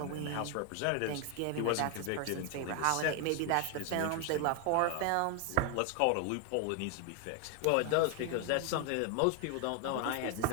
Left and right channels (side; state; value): both; different; correlation 0.01